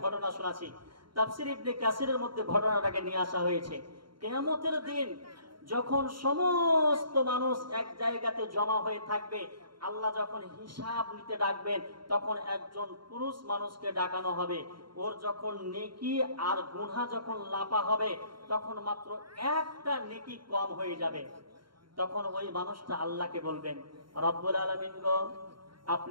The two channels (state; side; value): late; left; 0.73 ms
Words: ঘটনা শোনাচ্ছি। তাফসীর ইবনে কাসিরের মধ্যে ঘটনাটাকে নিয়ে আসা হয়েছে। কিয়ামতের দিন যখন সমস্ত মানুষ এক জায়গাতে জমা হয়ে থাকবে, আল্লাহ যখন হিসাব নিতে ডাকবেন, তখন একজন পুরুষ মানুষকে ডাকানো হবে। ওর যখন নেকি আর গুনাহ যখন লাপা হবে, তখন মাত্র একটা নেকি কম হয়ে যাবে। তখন ওই মানুষটা আল্লাহকে বলবেন, রব্বুল আলামিন গো,